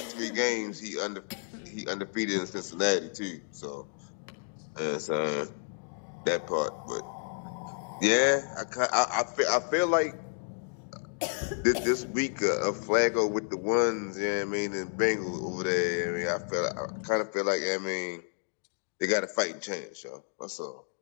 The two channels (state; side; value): silent; right; digital silence